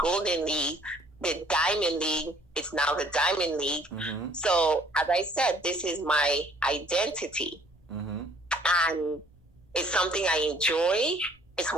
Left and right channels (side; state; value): both; normal; correlation 0.59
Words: League, the Diamond League. It's now the Diamond League. Mm-hmm. So, as I said, this is my identity. Mm-hmm. And it's something I enjoy. It's